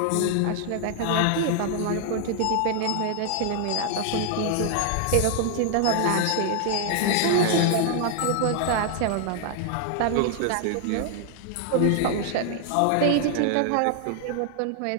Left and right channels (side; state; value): both; different; correlation 0.00